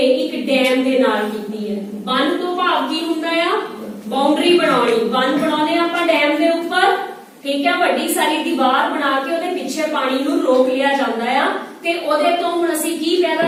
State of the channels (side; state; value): both; identical; correlation 1.00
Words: एक डैम के नाल कीती है। बन तो भाव की हुंदा आ बाउंड्री बनाउणी, बन बनाउने आपां डैम के उपर, ठीक है, वड्डी सारी दीवार बना के ओहदे पिछे पानी नूं रोक लिया जांदा आ ते ओहदे तो हुण असीं की पैदा